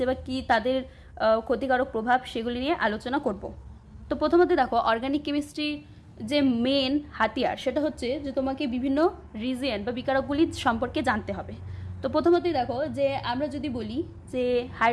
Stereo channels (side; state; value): both; identical; correlation 1.00